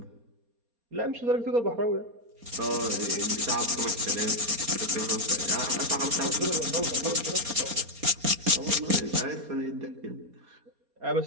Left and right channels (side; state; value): left; late; 4.2 ms